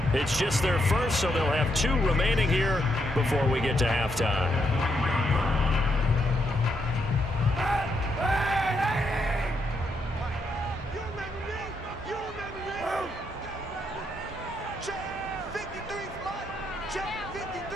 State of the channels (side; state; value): both; normal; correlation 0.78